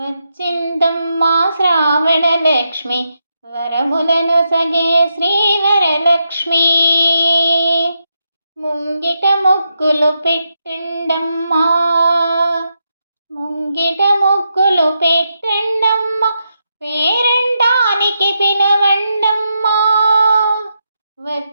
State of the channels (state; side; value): inverted; both; correlation -0.84